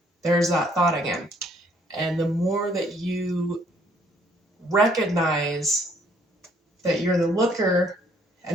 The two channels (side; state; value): both; normal; correlation 0.65